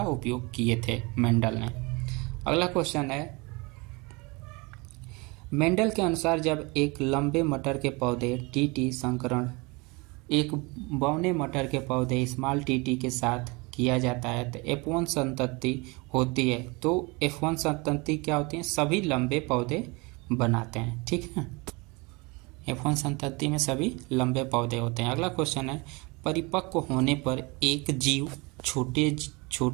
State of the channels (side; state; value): left; quieter; 27.0 dB